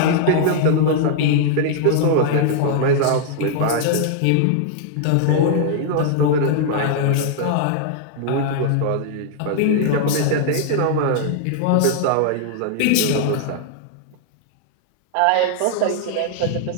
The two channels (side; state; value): both; different; correlation -0.01